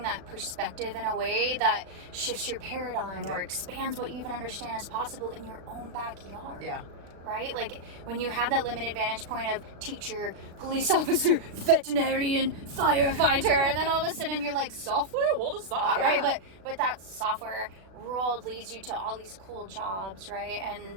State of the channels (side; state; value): left; late; 36 ms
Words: that perspective in a way that shifts your paradigm or expands what you even understand is possible in your own backyard. Yeah. Right? Like when you have that limited vantage point of teacher, police officer, veterinarian, firefighter, and then all of a sudden you're like, software? What is that? Yeah. Right? But that software world leads you to all these cool jobs, right?